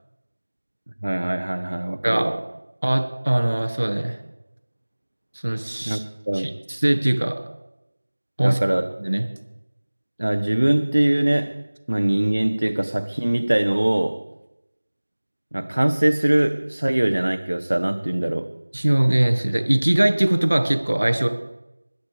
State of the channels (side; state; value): both; inverted; correlation -1.00